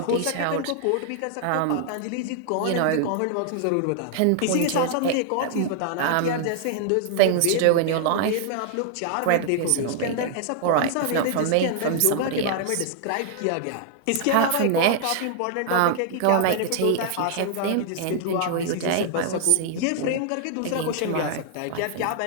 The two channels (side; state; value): both; different; correlation 0.00